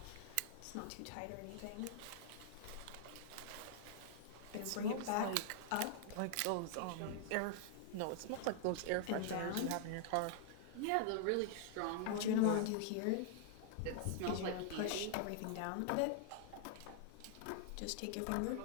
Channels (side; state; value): both; different; correlation -0.01